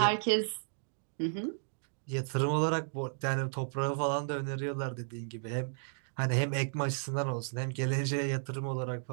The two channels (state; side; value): silent; left; digital silence